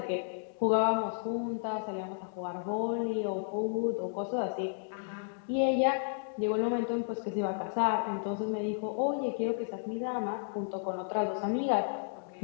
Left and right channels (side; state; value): right; silent; digital silence